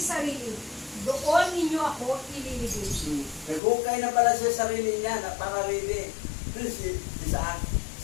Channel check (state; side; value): drops out; right; at 3.6 s